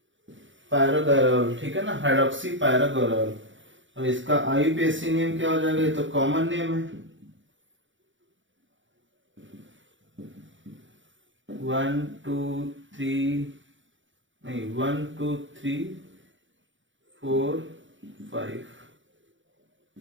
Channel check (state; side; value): late; left; 0.55 ms